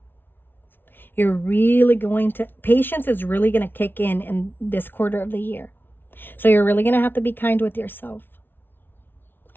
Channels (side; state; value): right; late; 0.10 ms